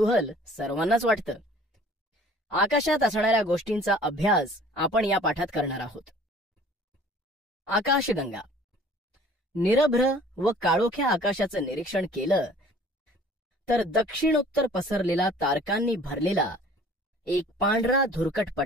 सर्वांनाच वाटतं. आकाशात असणाऱ्या गोष्टींचा अभ्यास आपण या पाठात करणार आहोत. आकाशगंगा. निरभ्र व काळोख्या आकाशाचं निरीक्षण केलं तर दक्षिणोत्तर पसरलेला तारकांनी भरलेला एक पांढरा धुरकट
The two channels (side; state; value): both; normal; correlation 0.51